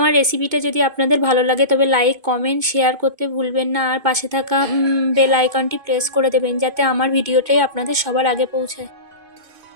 রেসিপিটা যদি আপনাদের ভালো লাগে তবে লাইক, কমেন্ট, শেয়ার করতে ভুলবেন না, আর পাশে থাকা বেল আইকনটি প্রেস করে দেবেন যাতে আমার ভিডিওটাই আপনাদের সবার আগে পৌঁছায়,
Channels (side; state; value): left; late; 2.2 ms